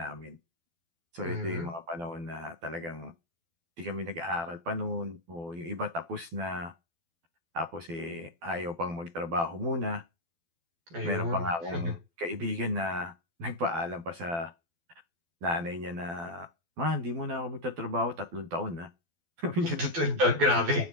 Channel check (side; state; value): left; late; 12 ms